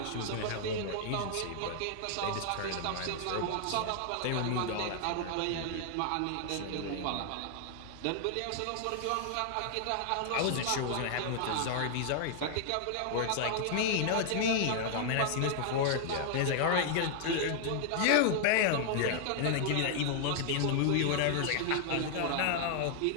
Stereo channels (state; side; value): different; both; correlation 0.00